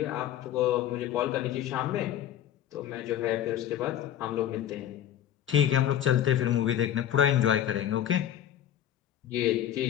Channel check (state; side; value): quieter; right; 11.0 dB